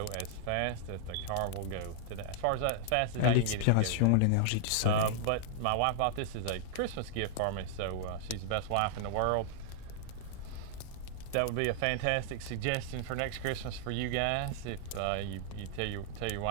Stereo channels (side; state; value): both; different; correlation -0.01